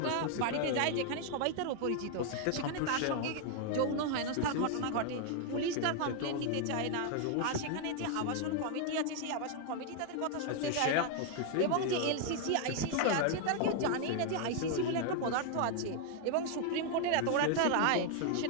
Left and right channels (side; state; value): both; different; correlation 0.00